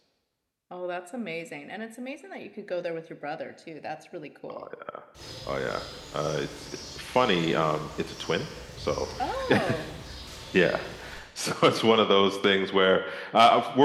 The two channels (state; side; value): identical; both; correlation 1.00